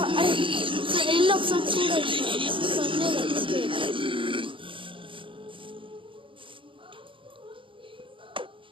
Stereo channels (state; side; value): late; left; 0.25 ms